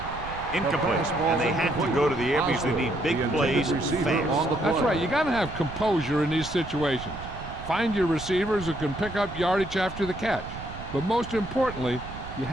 Incomplete. And they have to go to the air because they need big plays fast. That's right. You got to have composure in these situations. Find your receivers who can pick up yardage after the catch. But most importantly, you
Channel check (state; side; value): noise; right; rumble, 12 dB below the sound